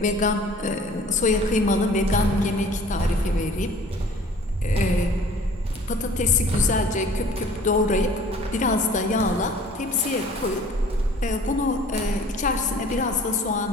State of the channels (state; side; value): normal; both; correlation 0.49